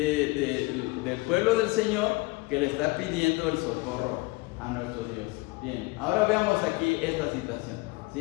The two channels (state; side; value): quieter; right; 24.3 dB